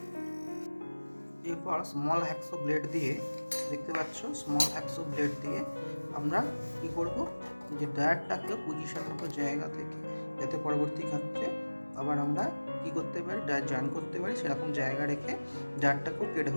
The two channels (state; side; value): inverted; both; correlation -1.00